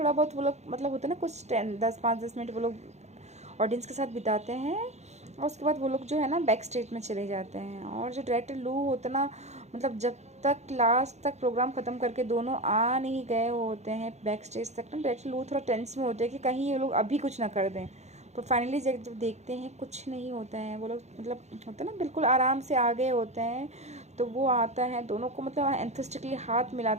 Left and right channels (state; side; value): late; left; 0.33 ms